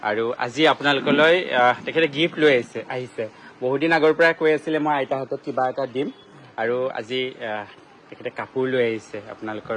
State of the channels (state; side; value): identical; both; correlation 1.00